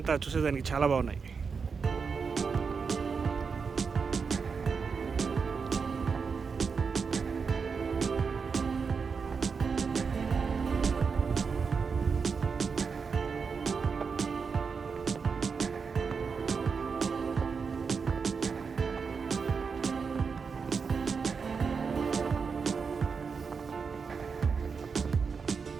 చూసేదానికి చాలా బాగున్నాయి.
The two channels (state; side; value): quieter; left; 5.5 dB